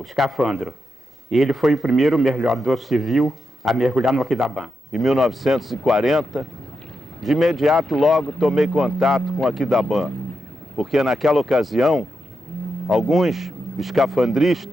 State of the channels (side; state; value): both; normal; correlation 0.86